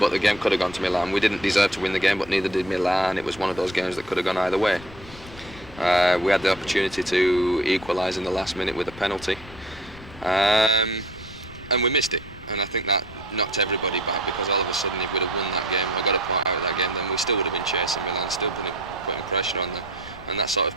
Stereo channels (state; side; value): noise; left; rumble, 18 dB below the sound